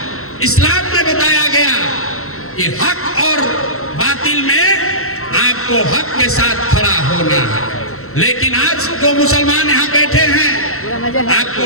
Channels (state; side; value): late; right; 0.63 ms